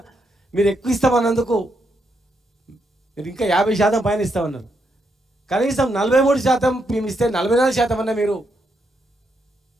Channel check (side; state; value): both; normal; correlation 0.79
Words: మీరు ఎక్కువ ఇస్తామన్నందుకు మీరు ఇంకా 50% పైన ఇస్తామన్నారు. కనీసం 43% మేము ఇస్తే 44% అన్న మీరు